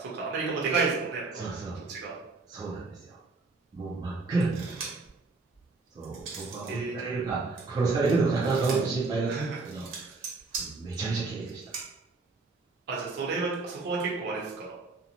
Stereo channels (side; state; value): left; quieter; 3.8 dB